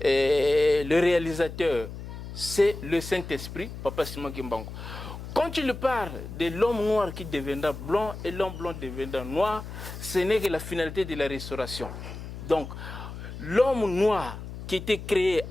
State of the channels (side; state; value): left; noise; hum, 10 dB below the sound